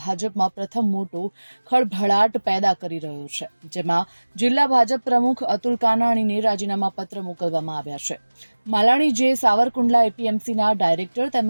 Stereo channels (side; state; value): both; inverted; correlation -1.00